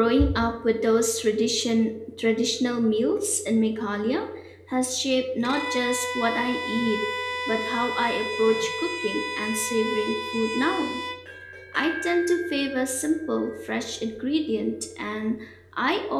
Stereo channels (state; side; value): identical; both; correlation 1.00